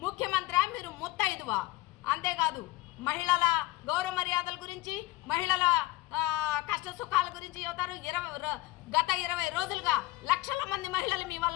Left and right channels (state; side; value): quieter; right; 18.8 dB